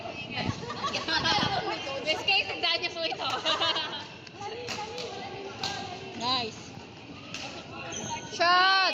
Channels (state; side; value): identical; both; correlation 1.00